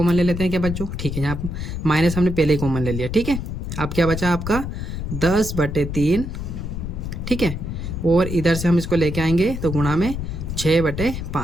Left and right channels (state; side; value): noise; left; rumble, 5 dB below the sound